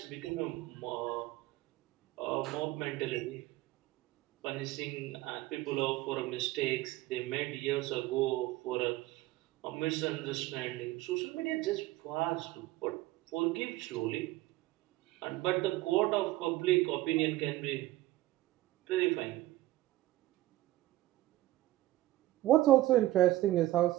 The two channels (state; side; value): quieter; left; 16.5 dB